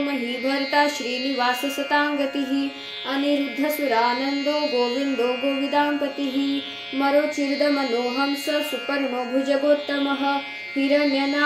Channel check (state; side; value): identical; both; correlation 1.00